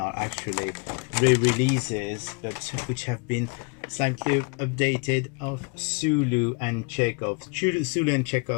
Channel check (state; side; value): quieter; right; 34.1 dB